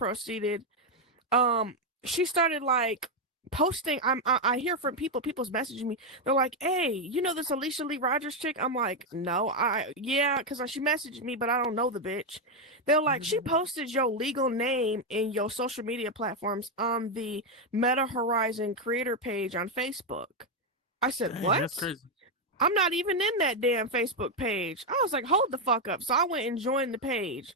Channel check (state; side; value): normal; both; correlation 0.04